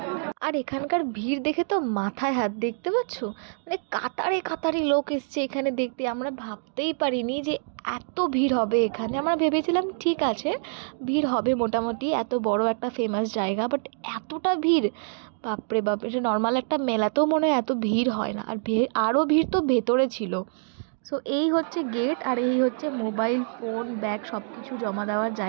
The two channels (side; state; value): left; silent; digital silence